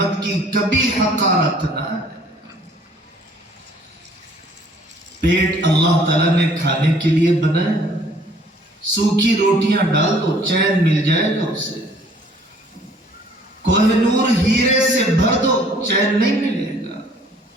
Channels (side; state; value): both; normal; correlation 0.57